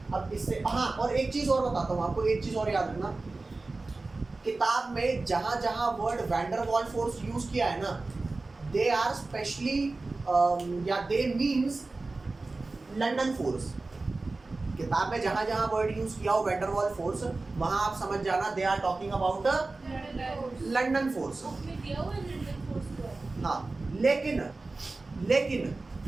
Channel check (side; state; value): left; quieter; 3.4 dB